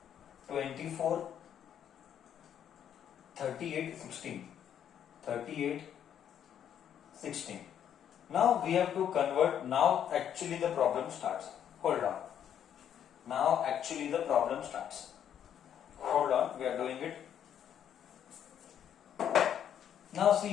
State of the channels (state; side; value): quieter; right; 9.4 dB